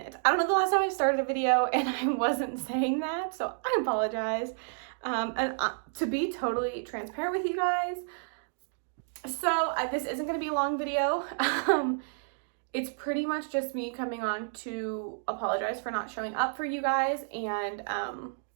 I don't know the last time I started a video and I wasn't saying that, so I apologize. To be totally transparent with you guys, so this isn't going to be a long video. It's pretty much just me coming on to apologize for not showing up for you guys and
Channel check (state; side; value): silent; left; digital silence